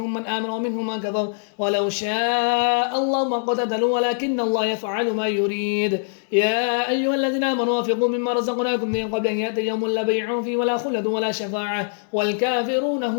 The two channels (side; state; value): right; silent; 64 dB below the other